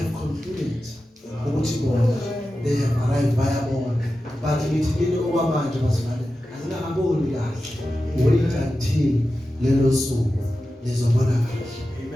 concluded ukuthi bona they have arrived bayabona. But ngithi kini okwamanje bazalwane azingakaboni kahle. Wait until lelo suku lizobona kahle.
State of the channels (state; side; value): normal; both; correlation 0.93